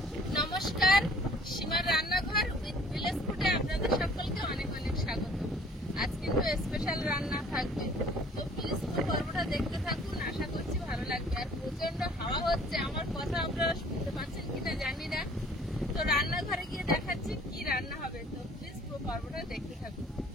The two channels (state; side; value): normal; both; correlation 0.54